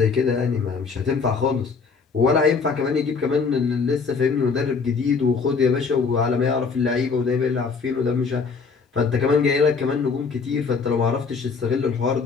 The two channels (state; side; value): quieter; right; 5.1 dB